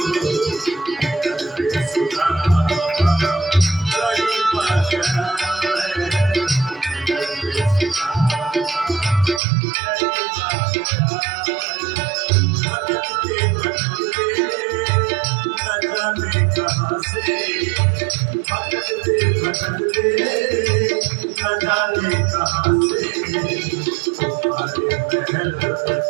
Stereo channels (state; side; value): drops out; left; at 9.4 s